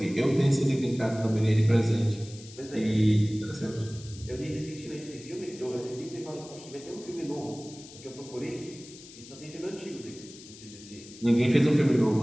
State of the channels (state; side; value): noise; left; hiss, 18 dB below the sound